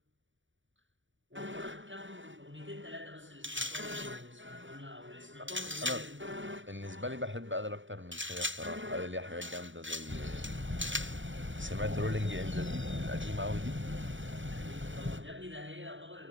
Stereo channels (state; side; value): late; left; 0.55 ms